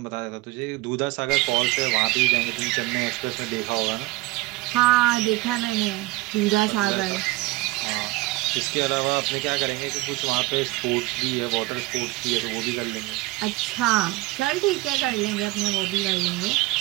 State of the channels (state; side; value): quieter; left; 20.7 dB